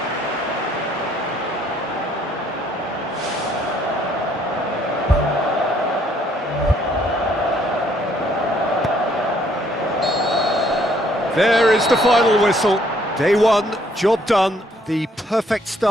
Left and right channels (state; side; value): normal; both; correlation 0.66